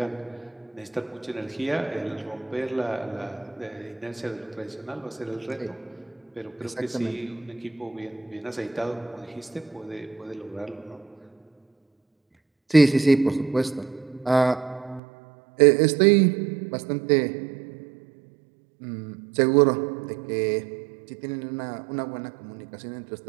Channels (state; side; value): drops out; left; at 15.0 s